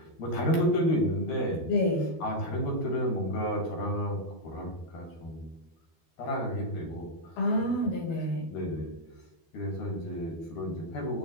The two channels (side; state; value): right; late; 12 ms